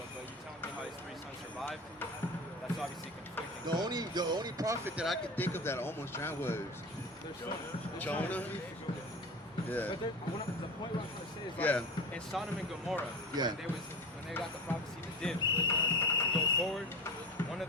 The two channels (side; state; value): both; normal; correlation 0.30